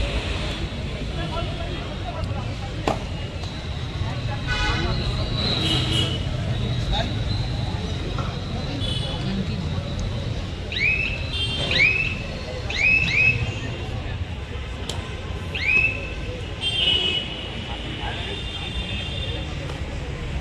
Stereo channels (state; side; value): identical; both; correlation 1.00